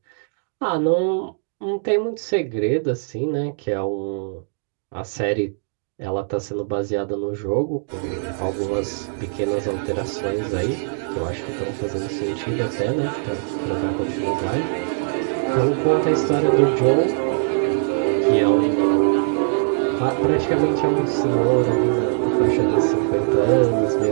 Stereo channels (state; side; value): silent; left; digital silence